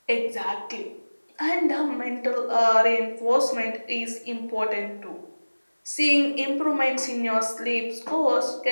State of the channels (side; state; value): both; inverted; correlation -1.00